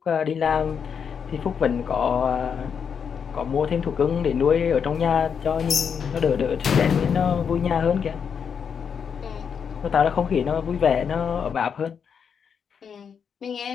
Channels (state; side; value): quieter; right; 6.9 dB